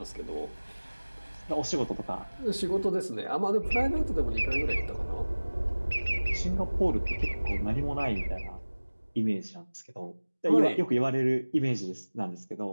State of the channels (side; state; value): both; inverted; correlation -1.00